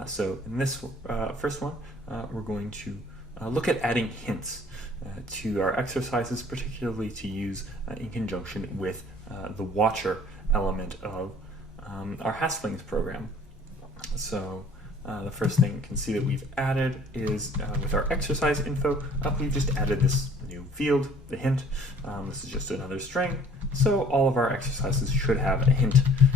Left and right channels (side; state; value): both; normal; correlation 0.53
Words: So in this first one, we're going to look at adding hints to our exercises, particularly to use in conjunction with the watcher element of our Haskelling's program. So the first thing you can see that we've added is with our exercise info, we've just added this new field, the hint. This is just another string, so all of our exercises should have a hint